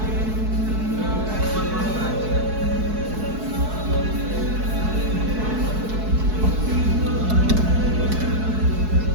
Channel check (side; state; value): left; late; 4.7 ms